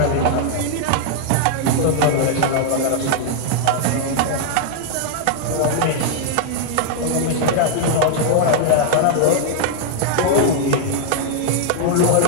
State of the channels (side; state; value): both; different; correlation -0.01